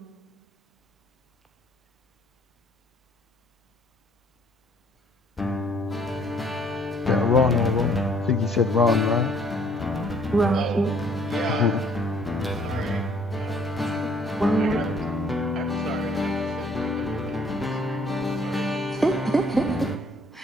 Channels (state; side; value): normal; both; correlation 0.61